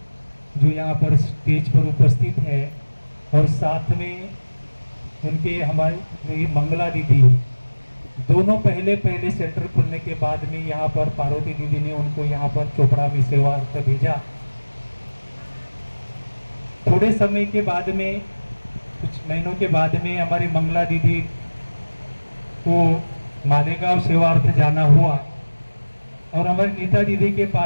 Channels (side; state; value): both; inverted; correlation -1.00